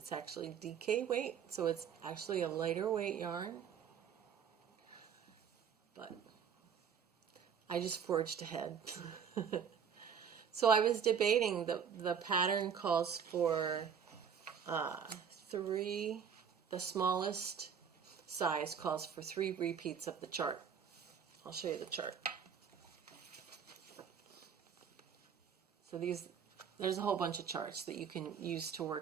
actually DK weight, so it's actually a lighter weight yarn. But I just forged ahead. So I was debating, the pattern calls for the smallest size calls for 3 repeats of the chart. I'll show you the chart. So there's a whole bunch of charts that you can use to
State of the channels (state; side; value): quieter; left; 7.4 dB